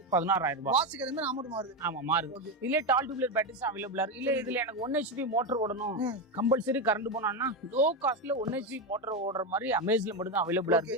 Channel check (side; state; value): both; normal; correlation 0.12